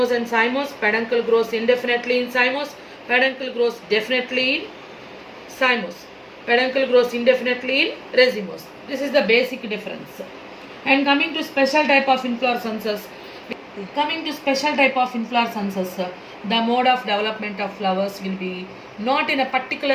and cymose, peduncle grows indefinitely in cymose, peduncle grows definitely in cymose, peduncle grows indefinitely in racemose. This is the basic difference. And coming to special type of inflorescences, the mode of development of flowers will be not in a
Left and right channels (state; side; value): identical; both; correlation 1.00